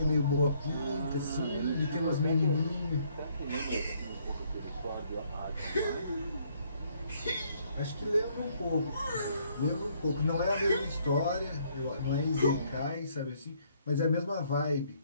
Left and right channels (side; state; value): both; inverted; correlation -0.67